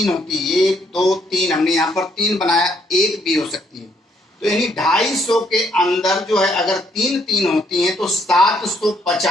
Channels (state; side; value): normal; both; correlation 0.71